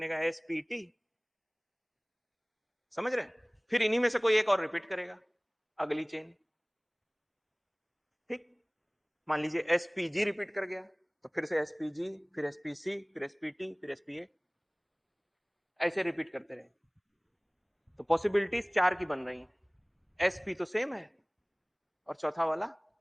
एसपीटी। समझ रहे हैं, फिर इन्हीं में से कोई एक और रिपीट करेगा अगली चेन। ठीक, मान लीजिए एसपीजी रिपीट कर गया तो फिर से एसपीजी, फिर एसपीसी, फिर एसपीटी, फिर एसपीए, ऐसे रिपीट करते रहे। तो पॉसिबिलिटीज 4 की बन रही हैं, एसपी तो सेम है, और चौथा वाला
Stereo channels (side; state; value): both; identical; correlation 1.00